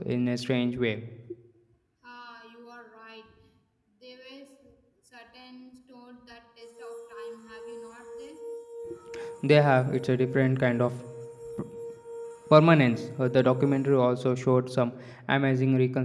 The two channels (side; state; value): both; identical; correlation 1.00